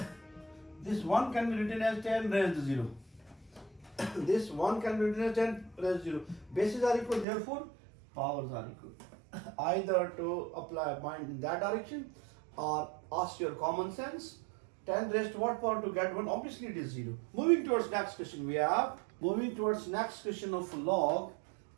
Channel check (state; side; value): drops out; left; at 7.2 s